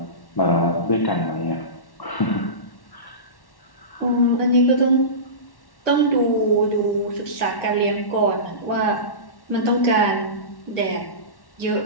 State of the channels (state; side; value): late; right; 1.1 ms